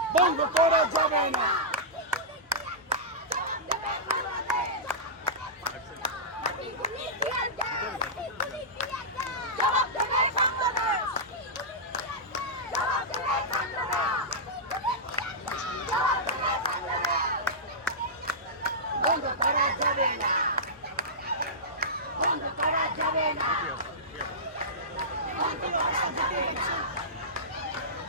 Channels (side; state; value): both; normal; correlation -0.15